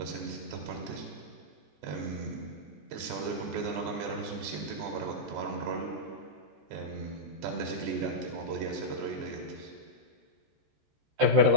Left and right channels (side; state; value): left; late; 13 ms